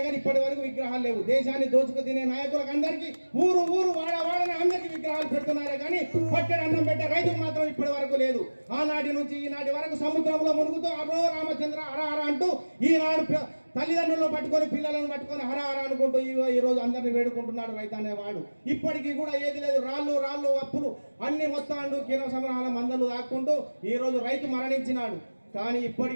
కానీ ఇప్పటి వరకు విగ్రహాలు లేవు. దేశాన్ని దోచుకు తినే నాయకులకు అందరికీ ఊరు వాడని అందరికీ విగ్రహాలు పెడుతున్నారే కానీ పట్టెడు అన్నం పెట్టే రైతుకు మాత్రం ఇప్పటి వరకు లేదు. ఆనాటి నుంచి ఈనాటి వరకు సముద్రంలో మునుగుతూ అరో రామచంద్ర హర అంటూ ఈనాడు తల్లిదండ్రులను పట్టుకొని పిల్లలను పట్టుకొని హర అనుకుంటూ ఈ రోజు అందరిని వేడుకుంటున్నాడు రైతు అనేవాడు. ఇప్పటికీ కూడా ఏది లేదు, రాళ్ళు అప్పులు అన్ని మొత్తాలు కిరణ సంగ్రహాల మందలు దాక్కుంటూ ఈ రోజు రైతు మరణించినాడు. కానీ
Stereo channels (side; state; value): both; inverted; correlation -1.00